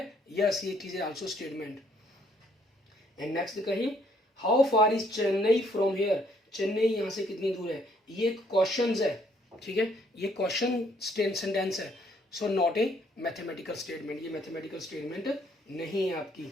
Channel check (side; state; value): both; normal; correlation 0.66